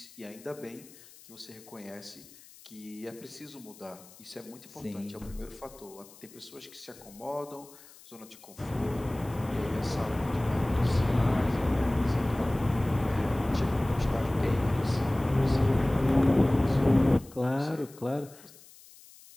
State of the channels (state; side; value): noise; left; hiss, 22 dB below the sound